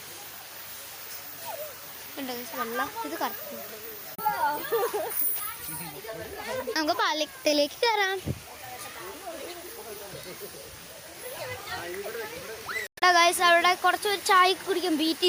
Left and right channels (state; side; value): identical; both; correlation 1.00